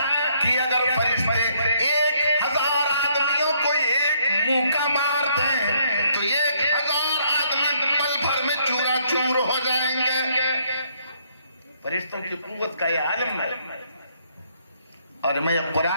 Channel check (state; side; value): inverted; both; correlation -0.69